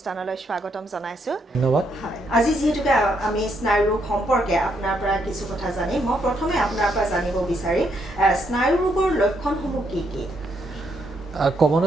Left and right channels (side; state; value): both; normal; correlation 0.75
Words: স্বাগতম জনাইছো ধন্যবাদ আজি যেহেতুকে আমি স্নায়ুৰোগ সম্পৰ্কে আপোনাৰ পৰা কিছু কথা জানিম মই প্ৰথমে আপোনাৰ পৰা জানিব বিচাৰিম স্নায়ুৰোগৰ লক্ষণসমূহ কি কি